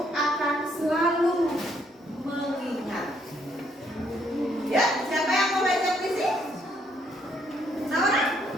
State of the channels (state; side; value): normal; both; correlation 0.70